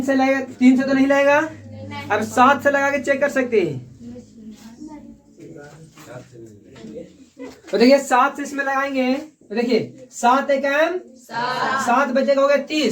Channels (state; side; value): identical; both; correlation 1.00